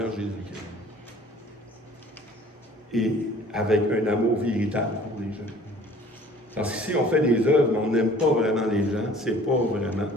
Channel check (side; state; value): both; normal; correlation 0.51